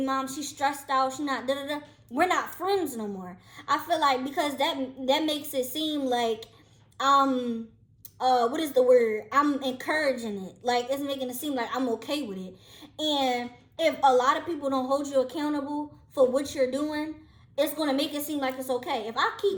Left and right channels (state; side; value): identical; both; correlation 1.00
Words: mom, she's stressed out, she not da da da, we're not friends no more. I feel like, because that makes it seem like what is the word? I'm encouraging it. Like, it's making it seem like I'm okay with it. And if a lot of people don't hold you accountable for what you're doing, it's going to make it seem like it's okay. If I